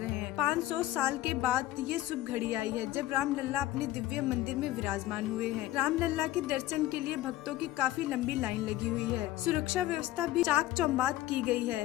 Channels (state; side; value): quieter; right; 15.0 dB